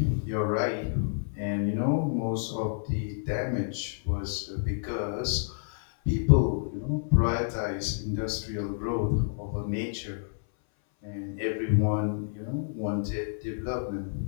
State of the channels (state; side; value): silent; right; 58 dB below the other